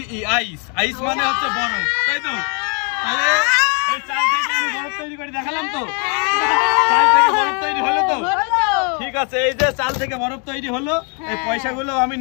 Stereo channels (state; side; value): quieter; right; 36.7 dB